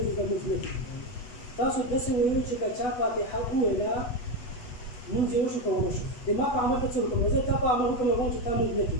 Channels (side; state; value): right; late; 8.2 ms